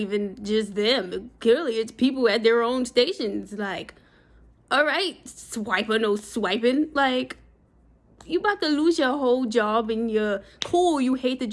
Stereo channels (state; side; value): identical; both; correlation 1.00